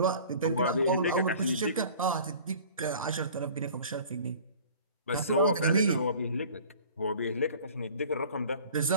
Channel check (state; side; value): inverted; both; correlation -0.47